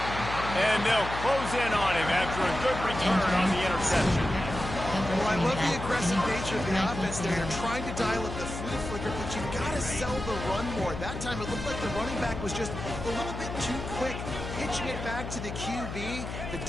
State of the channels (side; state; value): left; noise; hum, 7 dB below the sound